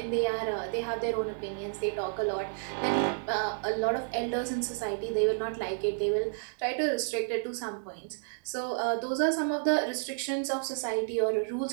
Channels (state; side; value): silent; left; digital silence